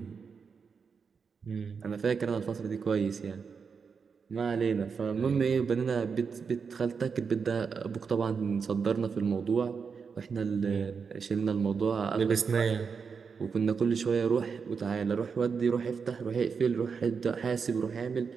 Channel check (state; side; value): quieter; left; 5.8 dB